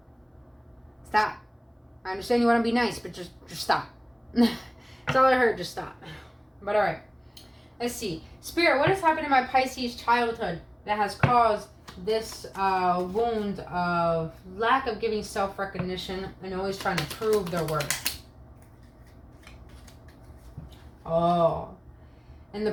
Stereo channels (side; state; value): both; identical; correlation 1.00